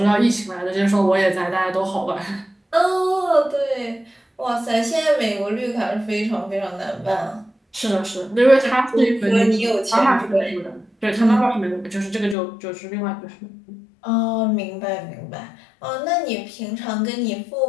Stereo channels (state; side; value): drops out; right; at 12.4 s